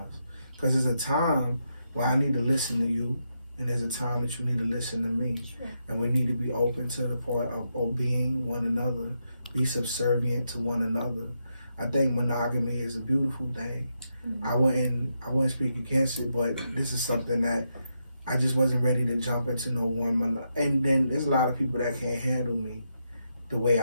because there's a time where I need to listen to you. And there's a time that you need to listen to me. Sure. And we need to be open to the part of obeying one another, be subservient to one another. I think monogamy is a beautiful thing. Mm-hmm. I wouldn't speak against it, but this is something that I just wasn't ready to jump into no one. And then there's a lot of people that can't handle me the way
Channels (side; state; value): both; inverted; correlation -0.83